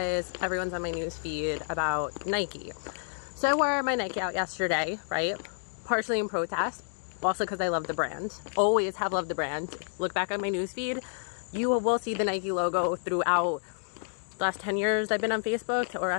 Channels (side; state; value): right; silent; digital silence